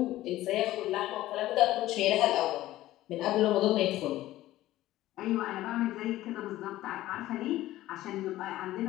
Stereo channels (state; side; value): quieter; right; 15.4 dB